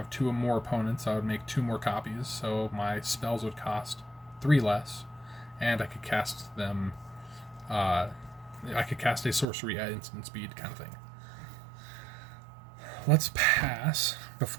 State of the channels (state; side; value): drops out; left; at 9.5 s